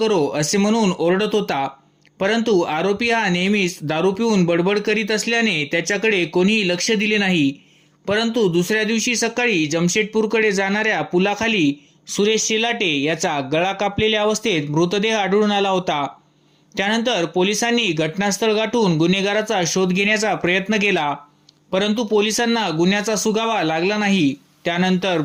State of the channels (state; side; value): identical; both; correlation 1.00